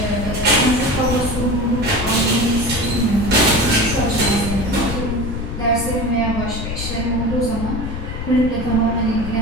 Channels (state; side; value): noise; left; rumble, 5 dB below the sound